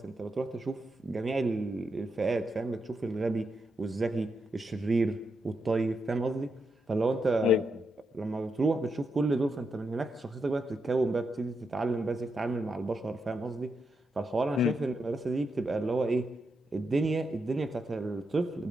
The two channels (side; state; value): both; normal; correlation 0.84